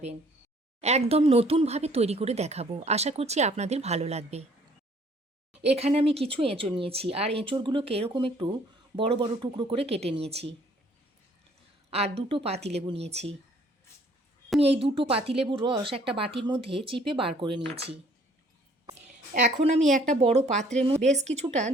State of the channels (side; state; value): both; normal; correlation 0.59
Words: একদম নতুনভাবে তৈরি করে দেখাবো, আশা করছি আপনাদের ভালো লাগবে। এখানে আমি কিছু এঁচোড় নিয়েছি, আর এঁচোড়গুলোকে এরকম একটু বড় বড় টুকরো করে কেটে নিয়েছি। আর দুটো পাতিলেবু নিয়েছি। আমি এই দুটো পাতিলেবুর রস একটা বাটির মধ্যে চিপে বার করে নিয়েছি। এখন আমি একটা বড় পাত্রের মধ্যে বেশ কিছুটা